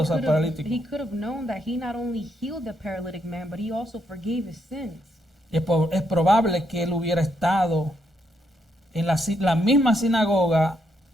al paralítico. He could have known that he not only healed the paralytic man, but he also forgave his sins. Es probable que él hubiera estado en la misma sinagoga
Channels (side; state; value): both; normal; correlation 0.77